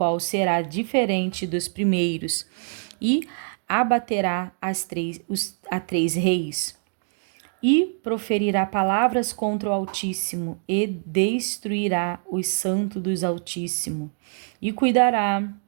será diferente dos primeiros, e abaterá a 3 reis. E proferirá palavras contra o Altíssimo, e destruirá os santos dos Altíssimo, e cuidará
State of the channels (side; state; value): left; silent; 56 dB below the other